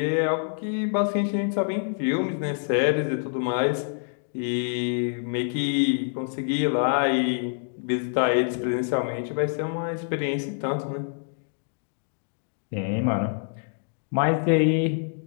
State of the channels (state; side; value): silent; right; digital silence